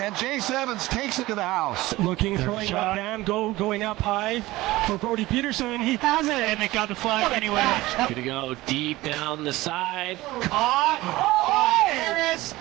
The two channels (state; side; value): quieter; left; 18.5 dB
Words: And Jace Evans takes it to the house. Looking, throwing up down, going up high for Brody Peterson. He has it. And it got the flag anyway. Gonna go deep down the side. Caught by Harris.